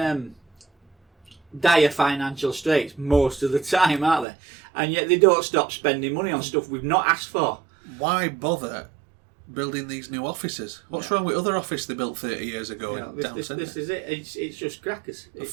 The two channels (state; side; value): drops out; left; at 4.2 s